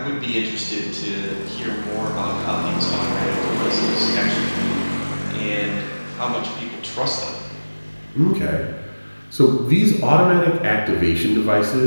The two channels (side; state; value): both; inverted; correlation -1.00